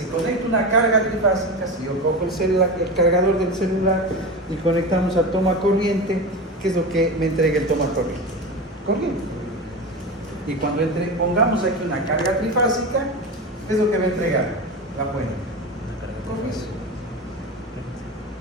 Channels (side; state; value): both; normal; correlation 0.24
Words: conecto una carga trifásica, si yo cojo el cargador del celular y conectamos a toma corriente, ¿qué es lo que me entrega el toma corriente? Corriente. Y cuando pongamos aquí una carga trifásica, ¿qué es lo que va a entregar la fuente? Corriente.